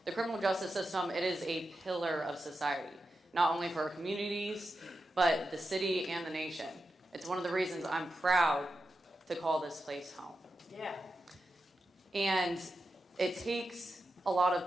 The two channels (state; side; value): normal; both; correlation 0.89